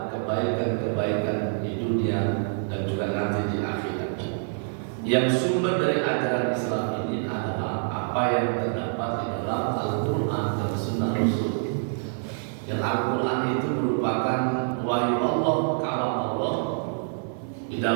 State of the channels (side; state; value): left; silent; digital silence